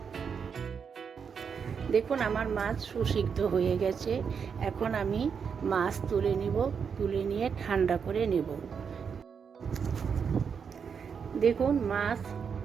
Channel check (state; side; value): quieter; left; 6.5 dB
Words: দেখুন আমার মাছ সুসিদ্ধ হয়ে গেছে। এখন আমি মাছ তুলে নিব, তুলে নিয়ে ঠান্ডা করে নেব। দেখুন মাছ